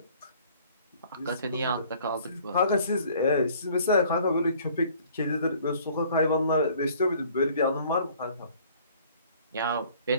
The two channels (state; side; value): inverted; both; correlation -0.55